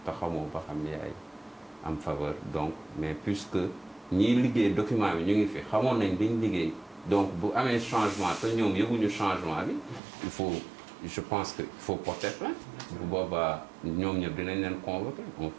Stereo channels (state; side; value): drops out; left; at 10.0 s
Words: te xamoo ba xam yaay am faveur donc mais puisque ñiy liggéey document bi ñu ngi fi xamoon nañ liñ liggéey donc bu amee changement te ñoom yëguñu changement bi il faut je pense que il faut porter plainte bu boobaa ñoom ñëpp dinañ leen convoquer